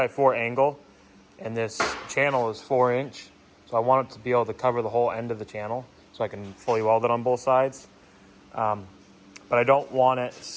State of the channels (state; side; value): identical; both; correlation 1.00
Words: angle, and this channel is 4-inch, so I want it to be able to cover the whole end of the channel so I can fully weld it on both sides. But I don't want it